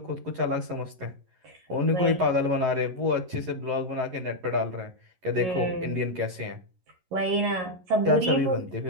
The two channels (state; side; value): late; left; 11 ms